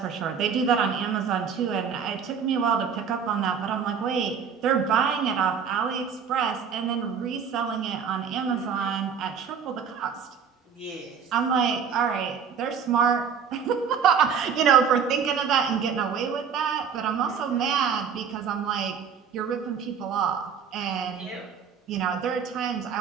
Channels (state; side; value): quieter; left; 6.9 dB